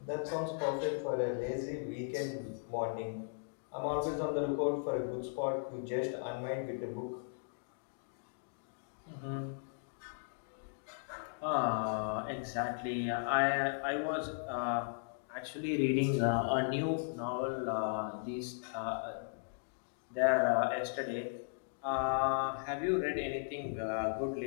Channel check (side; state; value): right; silent; digital silence